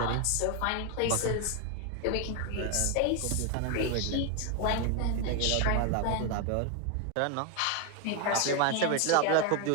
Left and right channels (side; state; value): both; different; correlation 0.01